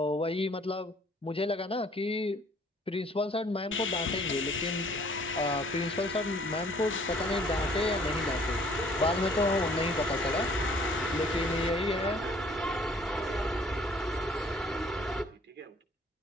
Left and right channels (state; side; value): normal; both; correlation 0.58